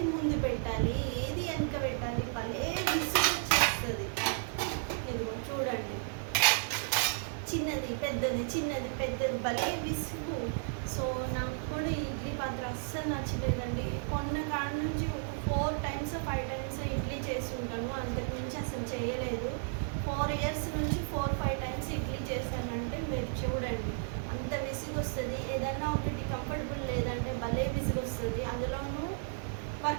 ముందు పెట్టాలి, ఏది వెనక పెట్టాలి, భలే విసుగు వచ్చేస్తుంది. ఇదిగో చూడండి, చిన్నది పెద్దది, చిన్నది పెద్దది, భలే విసుగు. సో నాకు కూడా ఇడ్లీ పాత్ర అస్సలు నచ్చలేదండి. కొన్న కాడ నుంచి ఒక 4 times 5 times ఇడ్లీ చేసి ఉంటాను, అంతకు మించి అసలు చేయలేదు. 4 years నుంచి 4-5 times ఇడ్లీ చేశానంటే మీరు చూడండి అంత విసుగు వస్తుంది. ఏదైనా ఒకటి కంఫర్టబుల్ లేదంటే భలే విసుగు వస్తుంది. అందులోనూ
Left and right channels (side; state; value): left; silent; 55 dB below the other